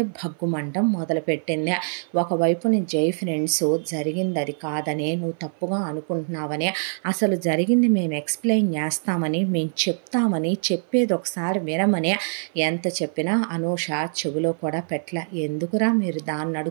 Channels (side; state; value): left; silent; 56 dB below the other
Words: భగ్గుమంటం మొదలుపెట్టింది. ఒకవైపుని జై ఫ్రెండ్స్ జరిగింది అది కాదని, నువ్వు తప్పుగా అనుకుంటున్నావని, అసలు జరిగింది మేము ఎక్స్ప్లెయిన్ చేస్తామని, మేము చెప్తామని, చెప్పేది ఒకసారి వినమని ఎంత చెప్పినా అనూష చెవిలో కూడా పెట్టల. ఎందుకురా మీరు దాన్ని